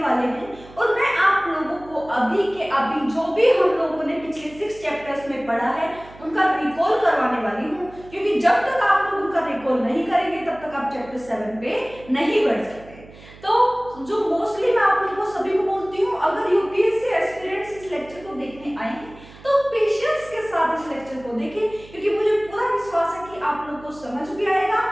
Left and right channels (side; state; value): right; noise; hum, 21 dB below the sound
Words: वाले हैं और मैं आप लोगों को अभी जो भी हम लोगों ने पिछले 6 चैप्टर्स में पढ़ा है उनका रिकॉल करवाने वाली हूँ, क्योंकि जब तक आप लोग उनका रिकॉल नहीं करेंगे तब तक आप चैप्टर 7 पे नहीं बढ़ सकते। तो जो मोस्टली मैं आप लोगों को सभी को बोलती हूँ, अगर यूपीएससी एस्पिरेंट्स इस लेक्चर को देखने आए हैं तो पेशेंस के साथ इस लेक्चर को देखें, क्योंकि मुझे पूरा विश्वास है कि आप लोग को समझ भी आएगा